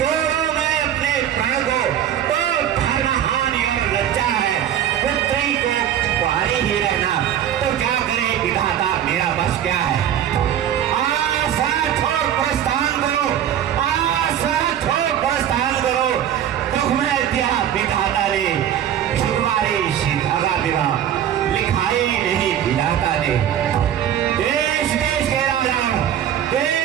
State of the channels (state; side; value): quieter; left; 10.3 dB